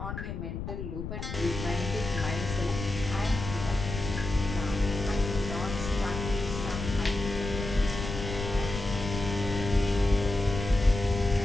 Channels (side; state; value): left; noise; rumble, 6 dB below the sound